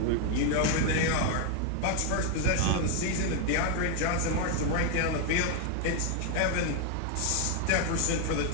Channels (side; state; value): both; different; correlation 0.01